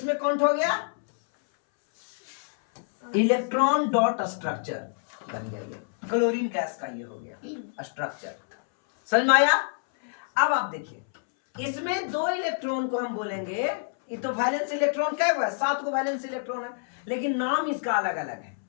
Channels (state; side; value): silent; right; 60 dB below the other